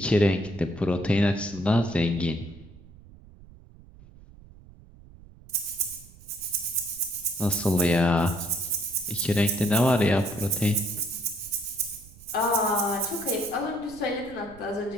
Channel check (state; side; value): noise; right; rumble, 21 dB below the sound